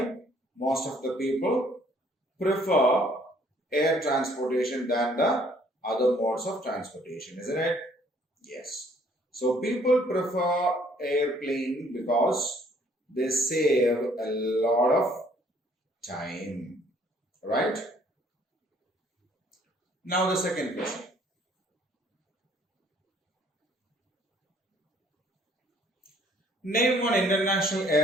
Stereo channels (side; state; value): both; normal; correlation 0.61